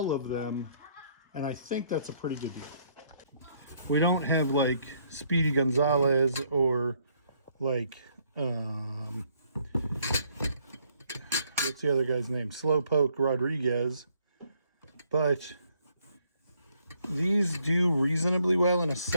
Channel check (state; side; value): inverted; both; correlation -0.68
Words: of them. And I think that's a pretty good deal. We don't have like Speedy Gonzalez or like, what's the other guy's name? Slowpoke Rodriguez. But these do reasonably well in a